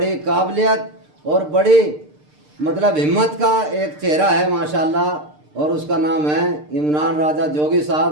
काबिलियत और बड़ी मतलब हिम्मत का एक चेहरा है माशाल्लाह, और उसका नाम है इमरान राजा जोगी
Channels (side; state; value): left; late; 6.7 ms